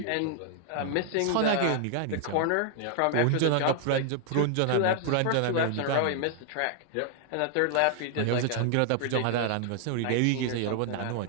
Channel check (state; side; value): different; both; correlation 0.00